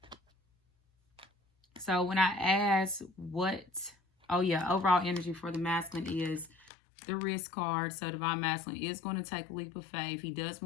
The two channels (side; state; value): right; drops out; at 6.7 s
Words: So when I ask overall energy for the masculine is the risk card. So divine masculine is going to take a leap of faith. He does